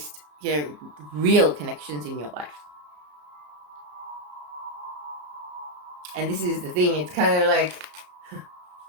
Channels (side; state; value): left; late; 33 ms